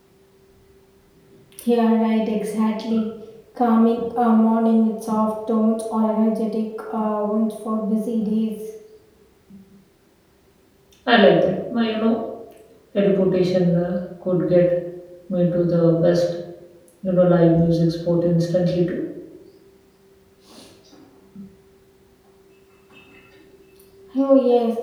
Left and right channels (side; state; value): both; identical; correlation 1.00